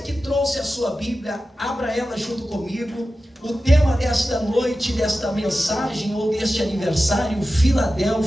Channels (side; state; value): both; normal; correlation 0.94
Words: trouxe a sua Bíblia, abra ela junto comigo. O tema desta noite, desta mensagem ou deste aniversário,